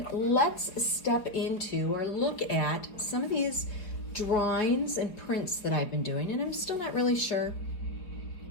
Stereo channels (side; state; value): right; late; 5.1 ms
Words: let's step into or look at some of these drawings and prints that I've been doing, and I'm still not really certain